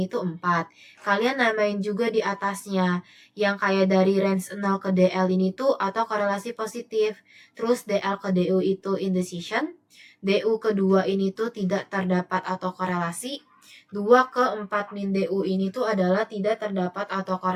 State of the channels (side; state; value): both; identical; correlation 1.00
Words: itu 4. Kalian namain juga di atasnya yang kayak dari range 0 ke DL ini tuh atau korelasi positif. Terus DL ke DU itu indecision. DU kedua ini tuh tidak terdapat atau korelasi. 2 ke 4 min DU ini tuh adalah tidak terdapat atau